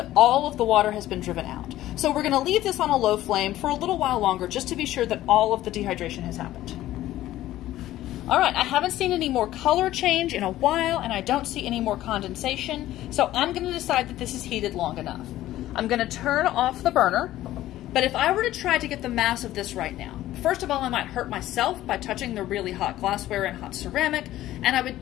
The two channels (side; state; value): right; quieter; 14.5 dB